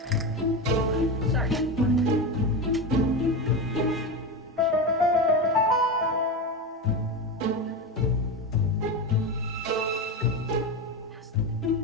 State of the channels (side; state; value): both; normal; correlation 0.18